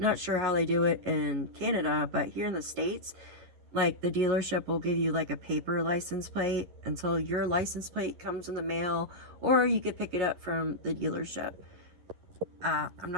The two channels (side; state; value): left; late; 11 ms